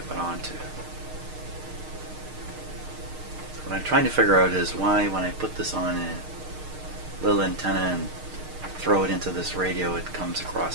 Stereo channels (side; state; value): left; late; 6.5 ms